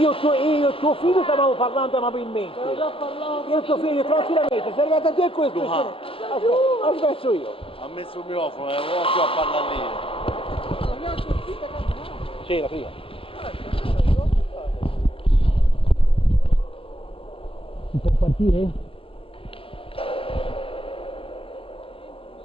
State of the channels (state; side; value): late; right; 0.27 ms